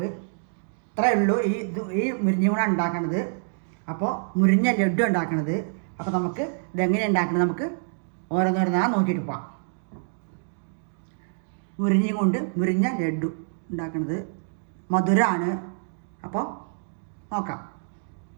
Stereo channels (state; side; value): silent; left; digital silence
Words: ഇത്രയേ ഉള്ളൂ ഈ മുരിങ്ങ കൂടെ ഉണ്ടാക്കണത്. അപ്പോൾ മുരിങ്ങ ലഡു ഉണ്ടാക്കണത്. അപ്പോൾ നമുക്ക് ഇതെങ്ങനെ ഉണ്ടാക്കണത് നമുക്ക് ഓരോന്നോരോന്നാ നോക്കിയിട്ട് പോവാം. മുരിങ്ങ കൊണ്ട് മുരിങ്ങ ലഡു ഉണ്ടാക്കുന്നത് മധുരമാണ്. അപ്പോൾ നോക്കാം.